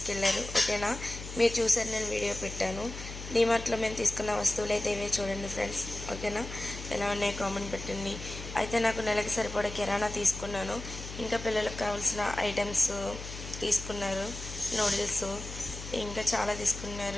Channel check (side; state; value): left; noise; hum, 10 dB below the sound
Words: ఓకేనా, మీరు చూసారు, నేను వీడియో పెట్టాను. డీమార్ట్లో మేము తీసుకున్న వస్తువులు అయితే ఇవే చూడండి ఫ్రెండ్స్. ఓకేనా, ఎలా ఉన్నాయి కామెంట్ పెట్టండి. అయితే నాకు నెలకి సరిపడా కిరాణా తీసుకున్నాను. ఇంకా పిల్లలకు కావాల్సిన ఐటమ్స్ తీసుకున్నారు, నూడిల్స్ ఇంకా చాలా